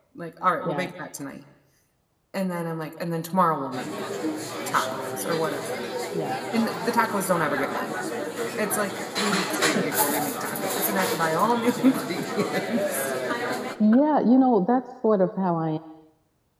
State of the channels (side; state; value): both; identical; correlation 1.00